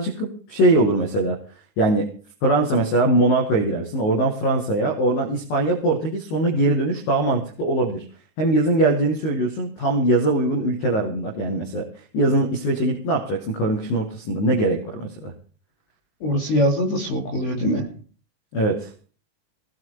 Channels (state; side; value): late; right; 20 ms